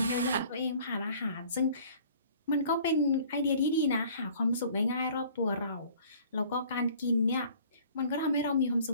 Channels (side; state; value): both; inverted; correlation -0.52